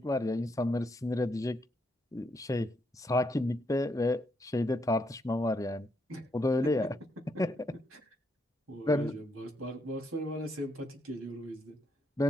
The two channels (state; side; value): normal; both; correlation 0.77